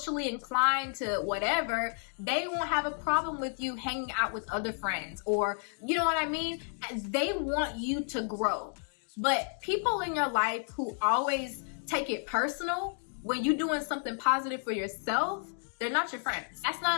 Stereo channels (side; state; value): right; silent; 57 dB below the other